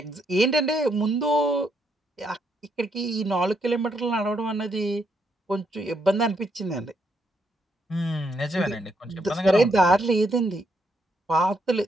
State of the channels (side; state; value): both; normal; correlation 0.76